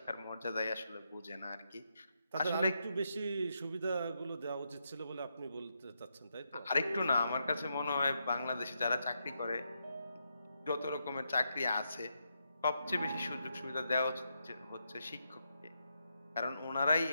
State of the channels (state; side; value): inverted; both; correlation -0.82